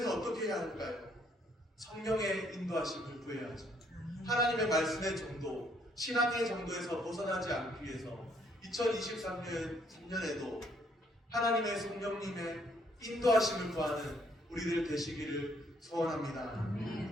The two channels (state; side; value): normal; both; correlation 0.68